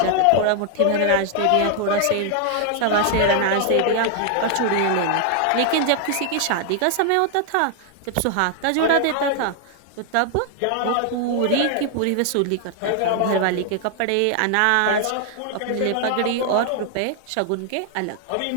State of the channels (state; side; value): different; both; correlation 0.00